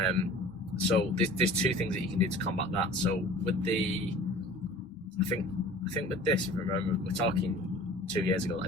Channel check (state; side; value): normal; both; correlation 0.44